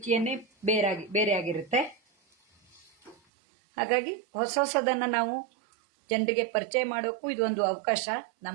ಬೇರೆ ಆಗಿರುತ್ತೆ. ಹಾಗಾಗಿ ಹೊಸದನ್ನ ನಾವು ಜನರಿಗೆ ಪರಿಚಯ ಮಾಡೋಕ್ಕೂ ಇದೊಂದು ಅವಕಾಶ.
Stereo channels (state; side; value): drops out; left; at 3.2 s